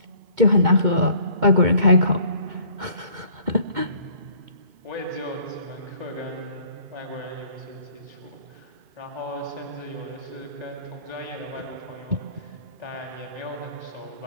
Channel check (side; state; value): left; late; 2.2 ms